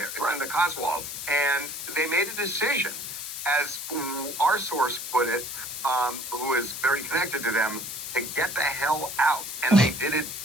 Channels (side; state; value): left; noise; hiss, 7 dB below the sound